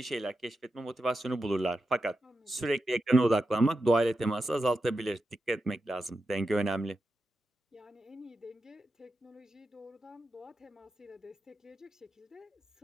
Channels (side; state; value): both; normal; correlation 0.89